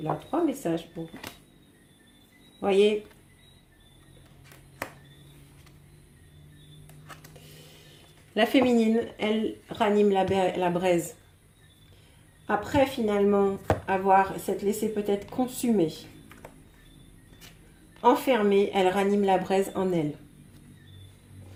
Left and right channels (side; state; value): both; identical; correlation 1.00